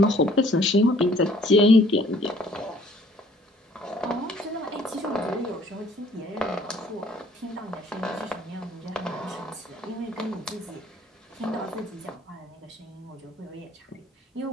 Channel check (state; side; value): normal; both; correlation 0.58